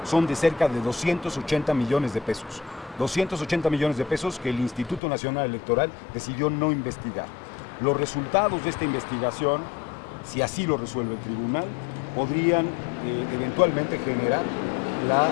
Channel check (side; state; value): right; drops out; at 5.0 s